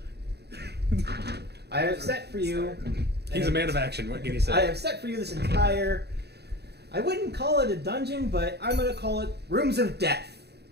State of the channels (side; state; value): left; late; 0.48 ms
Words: I have set for you... He's a man of action. What can you say? I have set for you this entire... I wouldn't call it a dungeon, but I'm going to call it Rooms of Death.